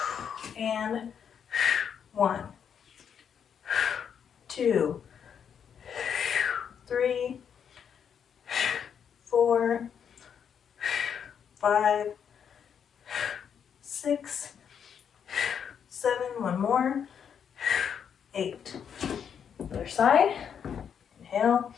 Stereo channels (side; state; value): right; quieter; 7.8 dB